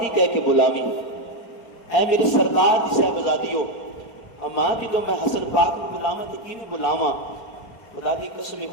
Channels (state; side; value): late; right; 4.4 ms